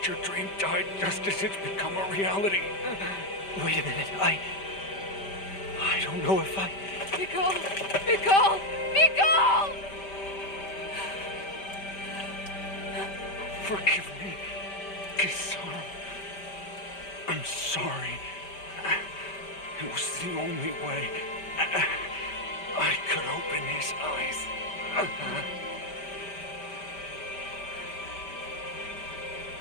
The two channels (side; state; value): right; late; 5.1 ms